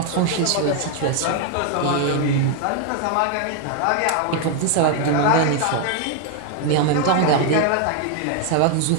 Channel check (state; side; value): different; both; correlation 0.00